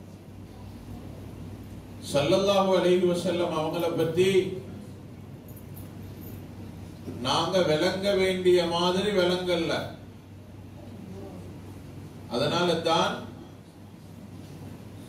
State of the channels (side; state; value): both; identical; correlation 1.00